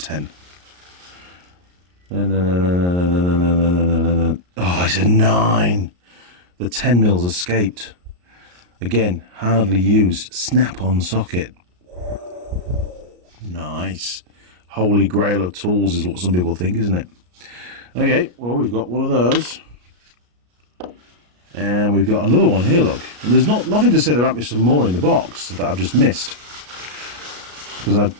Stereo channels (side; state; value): left; late; 33 ms